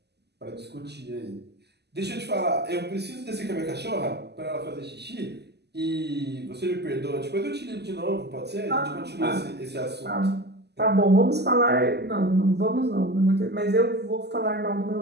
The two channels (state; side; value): late; left; 0.49 ms